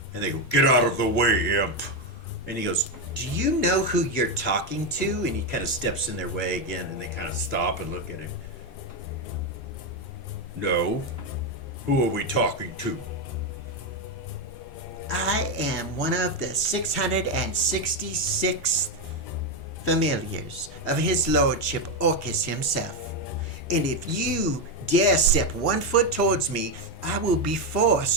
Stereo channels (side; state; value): both; normal; correlation 0.07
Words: and they go, "Get out of the way, imp." And he goes, "Do you know who you're talking to?" And he kind of steps in their way again, and they kind of stop and look at him. "No. Who are we talking to?" I am one of the 666th familiars of his lordship Orcus himself. And if you dare step 1 foot towards me, I will be